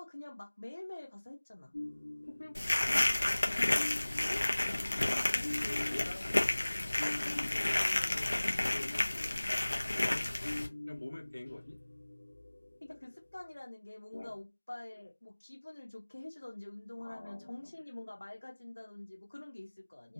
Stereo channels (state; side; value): inverted; both; correlation -1.00